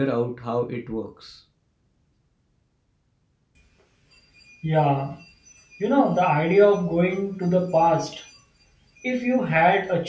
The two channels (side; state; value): both; identical; correlation 1.00